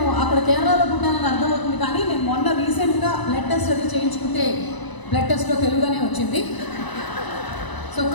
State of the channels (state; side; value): late; right; 1.0 ms